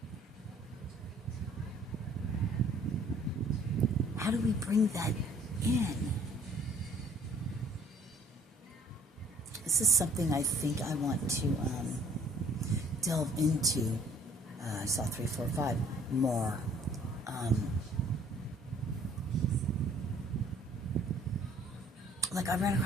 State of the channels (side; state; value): both; normal; correlation 0.57